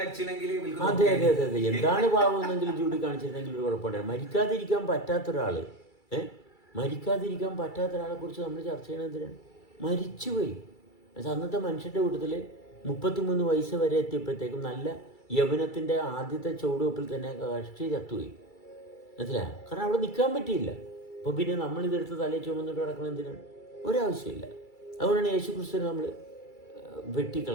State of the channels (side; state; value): right; late; 2.3 ms